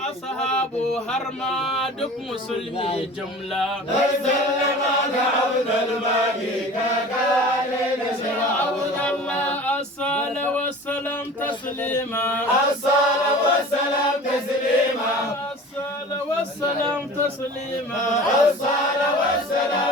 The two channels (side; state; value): both; normal; correlation 0.40